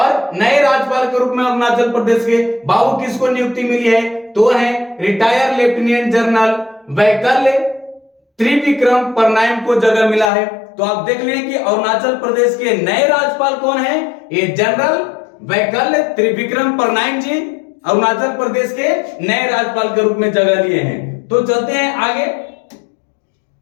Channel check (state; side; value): drops out; right; at 10.3 s